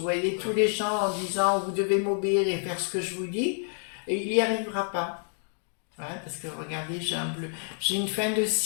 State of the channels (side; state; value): right; silent; 55 dB below the other